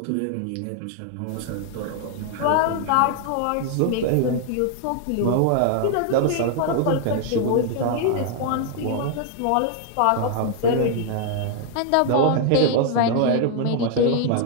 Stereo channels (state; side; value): different; both; correlation 0.00